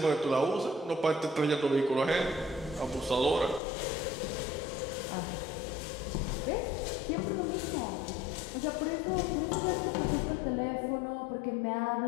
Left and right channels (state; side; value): drops out; right; at 3.6 s